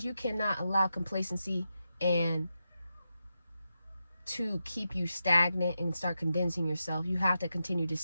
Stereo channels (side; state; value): both; inverted; correlation -0.88